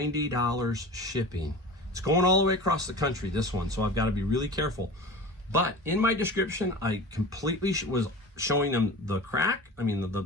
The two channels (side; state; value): both; normal; correlation 0.35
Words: shipping. It's going all the way across the country, this one, so I've got to be really careful. But in my description, I completely was showing them the crack, I mean